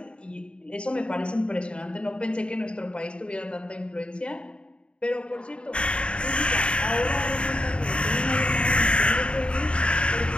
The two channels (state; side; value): late; right; 0.056 ms